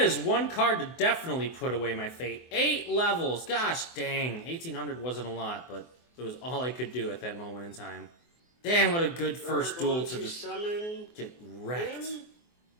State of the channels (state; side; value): late; right; 24 ms